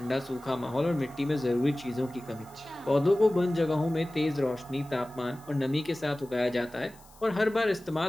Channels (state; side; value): noise; left; hiss, 26 dB below the sound